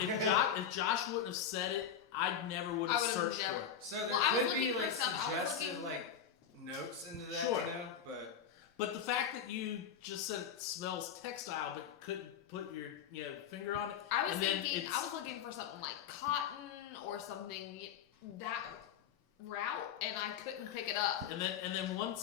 Josh wouldn't have said it, I never would have I would've searched never- for it. So there Well, I could was be looking for like stuff- I was suggestive looking- like notes into that, Sure. but But the fact that you just said it smells textile, but couldn't put your finger on it. I was And then thinking, it's- I was looking for something like cotton or something that route, and I couldn't pick it up. And then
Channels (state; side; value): quieter; right; 8.0 dB